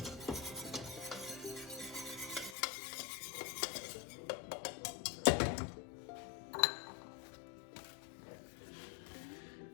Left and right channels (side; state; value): right; drops out; at 2.6 s